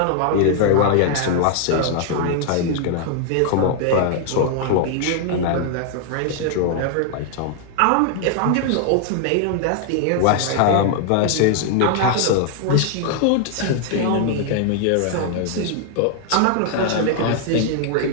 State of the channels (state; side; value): different; both; correlation 0.00